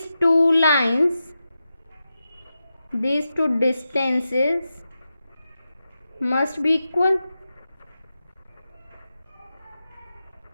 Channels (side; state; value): both; inverted; correlation -0.90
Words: two lines, these two distances must be equal.